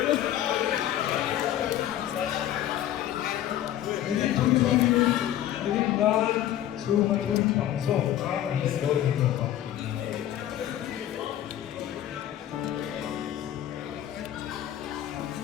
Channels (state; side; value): quieter; right; 12.3 dB